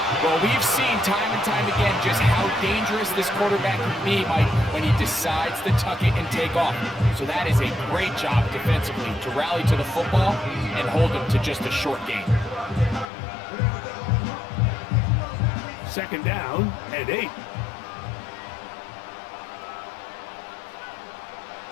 Well, we've seen time and time again just how dangerous this quarterback can be, Mike, when he decides to tuck it and take off. So that is a great job defensively to rally to the football and hold him to just a short gain. Second down and 8.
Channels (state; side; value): drops out; right; at 13.1 s